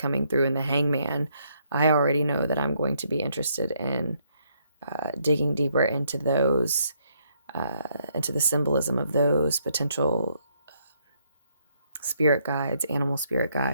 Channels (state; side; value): inverted; both; correlation -0.72